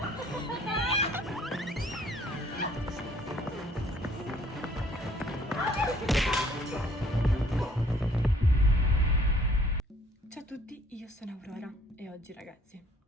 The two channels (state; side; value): normal; both; correlation 0.59